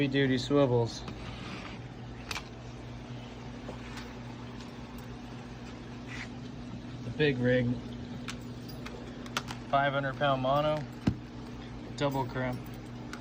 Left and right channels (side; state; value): both; identical; correlation 1.00